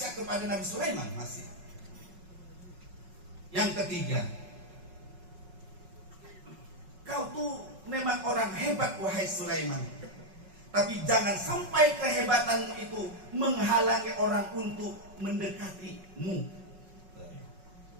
kepada Nabi Sulaiman masih. Yang ketiga, kau tuh memang orang hebat wahai Sulaiman. Tapi jangan sampai kehebatanmu itu menghalangi orang untuk mendekatimu.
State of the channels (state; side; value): late; left; 5.4 ms